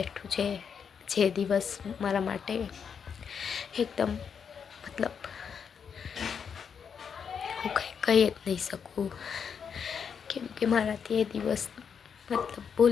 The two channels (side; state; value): right; quieter; 6.9 dB